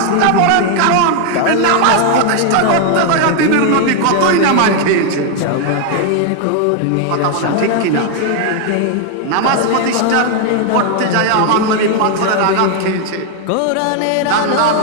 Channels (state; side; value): different; both; correlation 0.00